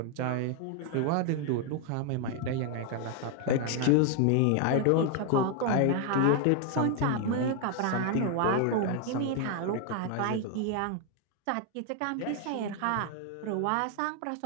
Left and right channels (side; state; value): both; different; correlation 0.00